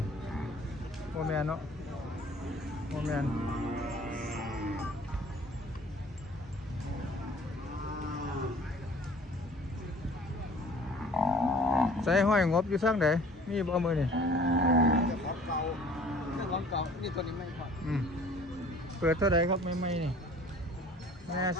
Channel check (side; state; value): both; normal; correlation 0.51